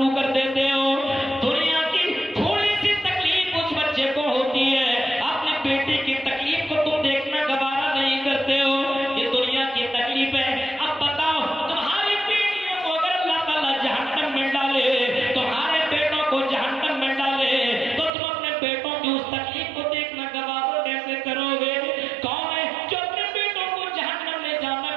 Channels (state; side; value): drops out; left; at 18.1 s